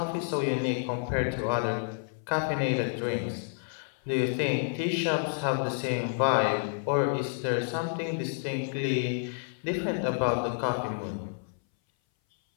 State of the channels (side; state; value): right; silent; 58 dB below the other